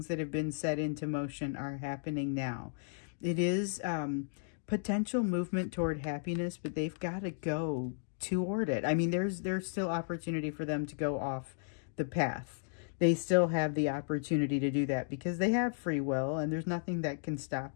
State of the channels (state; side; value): silent; right; digital silence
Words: that have been set into motion are happening now. It is potential movement toward happiness, but they've got to go toward it. I mean, there's still opportunity for them to go off the path. They still have the opportunity to do that because they have free will, and there's nothing that can stop